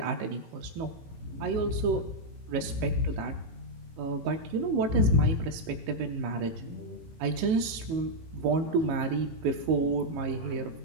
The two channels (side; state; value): left; late; 18 ms